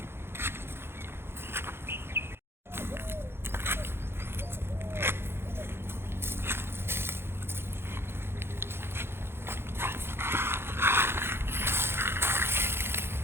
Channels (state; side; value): late; left; 0.11 ms